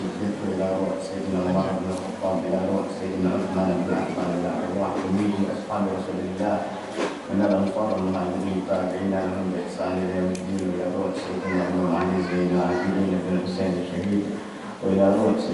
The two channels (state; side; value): identical; both; correlation 1.00